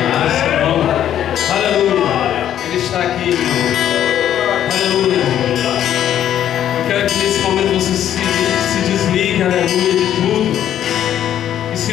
nessa mão? Aleluia. Ele está aqui, irmão. Aleluia. Eu quero que nesse momento você se desligue, aleluia, de tudo. E se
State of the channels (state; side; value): quieter; right; 10.8 dB